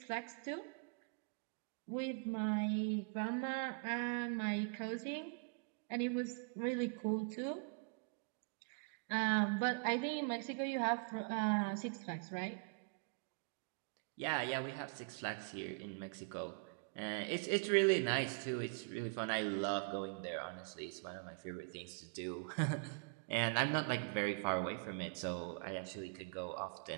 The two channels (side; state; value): left; quieter; 36.4 dB